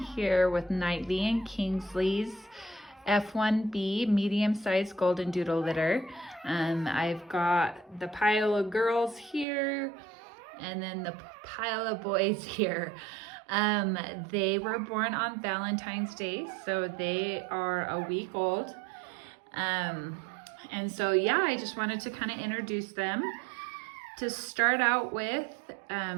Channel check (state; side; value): drops out; left; at 9.5 s